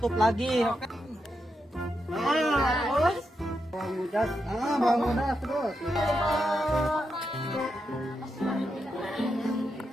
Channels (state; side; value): normal; both; correlation 0.85